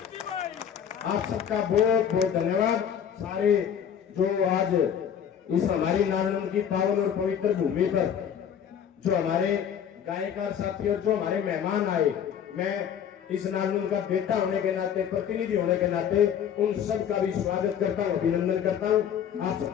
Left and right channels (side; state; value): right; quieter; 8.6 dB